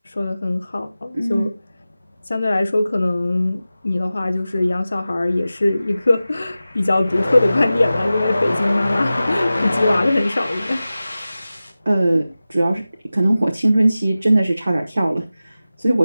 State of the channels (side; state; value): both; inverted; correlation -0.96